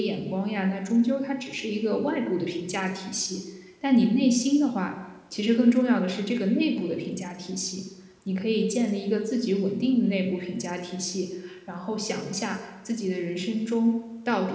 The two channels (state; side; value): identical; both; correlation 1.00